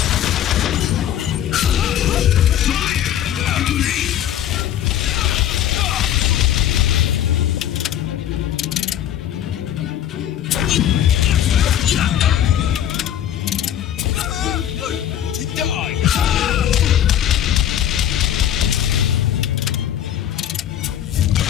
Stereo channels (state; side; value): quieter; right; 10.8 dB